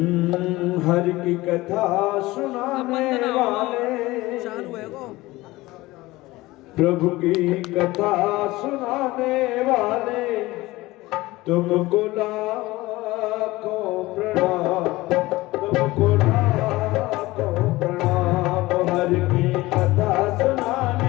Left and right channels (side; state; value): right; quieter; 19.4 dB